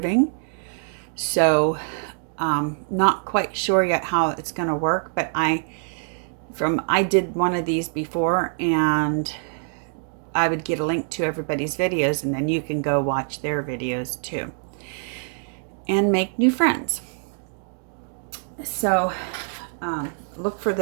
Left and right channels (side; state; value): left; silent; 56 dB below the other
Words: So, not quite sure yet how it's going to work, but I did one of these before, and I would get a link to everybody's videos, and then you can go watch their videos too and make new friends. So look for